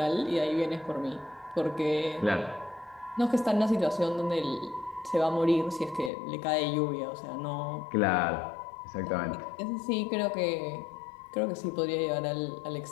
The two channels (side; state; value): right; drops out; at 6.1 s